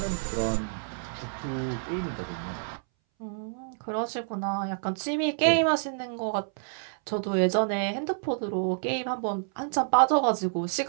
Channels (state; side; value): silent; left; 59 dB below the other